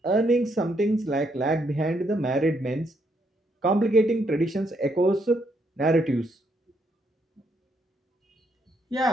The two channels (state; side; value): normal; both; correlation 0.74